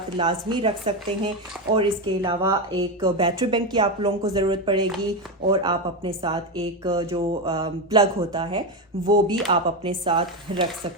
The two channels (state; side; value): normal; both; correlation 0.12